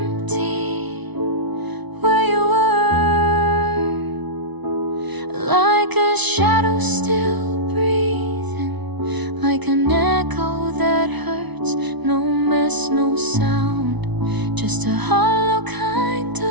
where you were, like a shadow still breathing, like an echo that hurts. No mess, no sound, just a hollow kind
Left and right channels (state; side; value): late; left; 1.0 ms